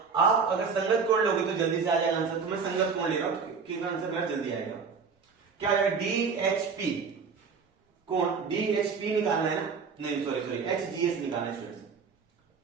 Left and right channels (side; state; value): left; quieter; 5.5 dB